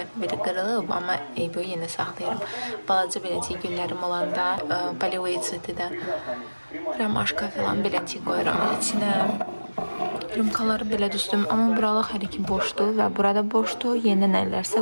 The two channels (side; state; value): both; inverted; correlation -1.00